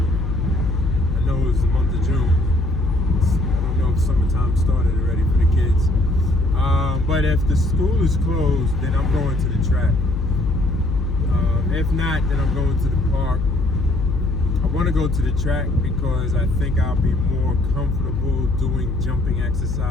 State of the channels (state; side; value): noise; left; hum, 2 dB below the sound